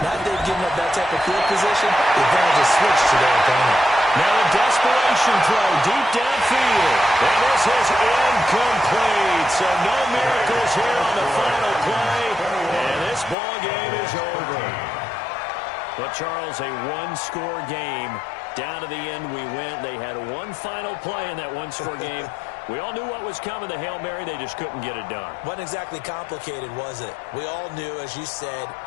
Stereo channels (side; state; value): right; drops out; at 13.4 s